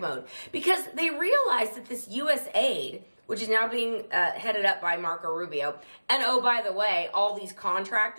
mode because they realize that this USAID, which is now being headed up by Marco Rubio, and oh, by the way, all these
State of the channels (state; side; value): inverted; both; correlation -1.00